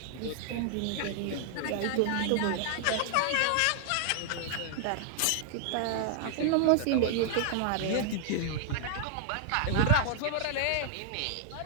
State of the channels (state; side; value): different; both; correlation 0.00